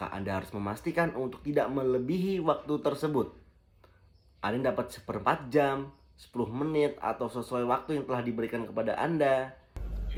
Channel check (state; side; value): identical; both; correlation 1.00